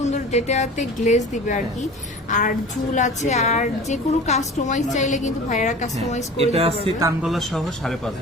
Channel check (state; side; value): normal; both; correlation 0.38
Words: যেটাতে গ্লেজ দিবে আর কি। আর ঝুল আছে, আর যে কোনো কাস্টমাইজ চাইলে কিন্তু ভাইয়েরা কাস্টমাইজ করে দিতে এটা আছে পারবে। কানগলা সহ 5.5।